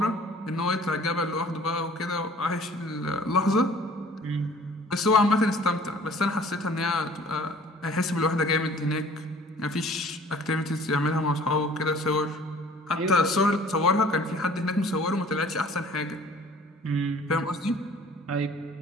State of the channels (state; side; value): normal; both; correlation 0.52